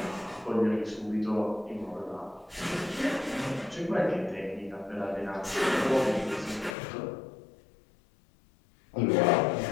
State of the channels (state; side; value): drops out; right; at 6.8 s